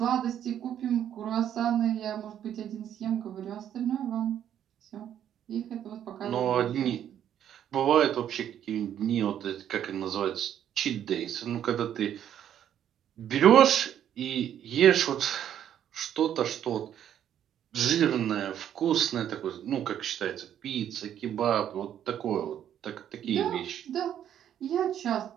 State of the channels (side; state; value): left; quieter; 10.1 dB